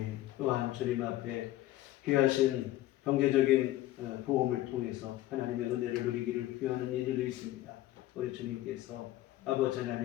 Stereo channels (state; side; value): quieter; right; 15.3 dB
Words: 또한 주님 앞에 귀하신 경제적인 도움을 통해서 하나님의 은혜를 누리기를 귀하는 이들도 있습니다. 우리 주님께서 아버지